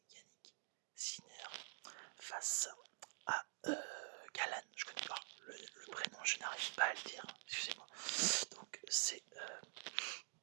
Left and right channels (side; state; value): left; silent; digital silence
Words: Sinner face à Galan. Je connais pas le prénom, je n'arrive pas à le dire, excusez-moi. Donc c'est